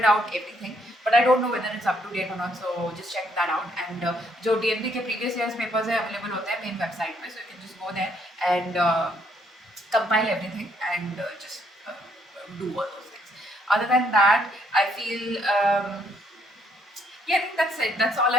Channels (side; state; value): both; normal; correlation 0.69